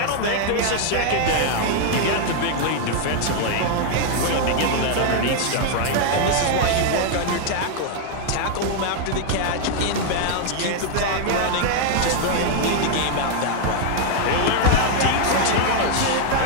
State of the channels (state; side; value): different; both; correlation 0.00